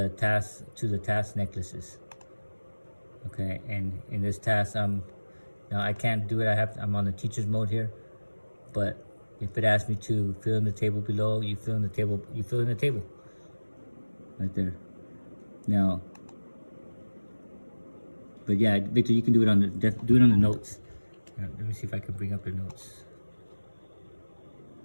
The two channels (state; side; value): inverted; both; correlation -1.00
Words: task necklaces. Okay, and in this task I'm Now I can't do it. I'm on the teacher's mode here, but if it asks me to fill in the table below, you fill in the table. You fill in the table right there. Now, but yeah, Victor, you can do it on the notes. Let me see if I can bring up the notes.